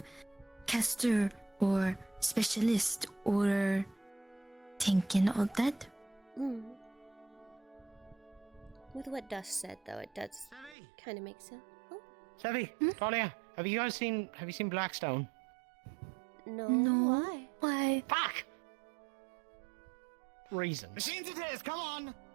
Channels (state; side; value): drops out; left; at 10.8 s